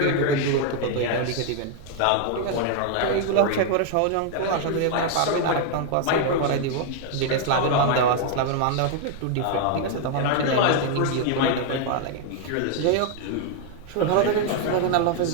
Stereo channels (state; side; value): different; both; correlation 0.00